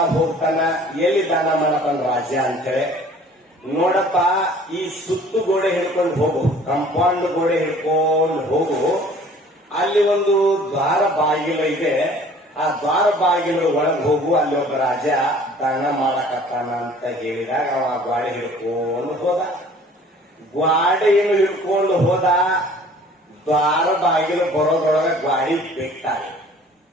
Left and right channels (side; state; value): both; normal; correlation 0.51